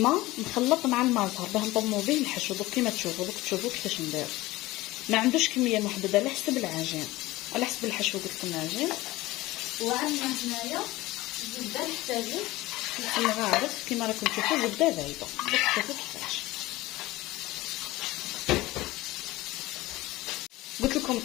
مخلط مع الماء زهر باه نضمو به الحشو. دوك كيما تشوفوا كيفاش ندير. ما عندوش كميه محدده على حسب العجين، على حسب الحشو قلت لكم العجين. وعندنا هنايا زبده نحتاجو الغارف كيما راكم تشوفوا، زبده بايضه. دوك شوفوا كيفاش قلت لكم.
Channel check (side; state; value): right; quieter; 18.8 dB